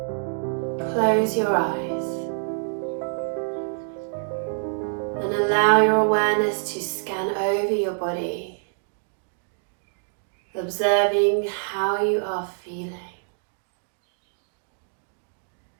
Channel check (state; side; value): silent; left; digital silence